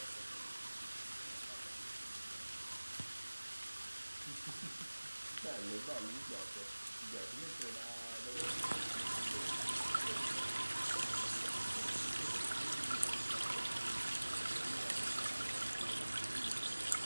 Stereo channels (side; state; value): both; inverted; correlation -1.00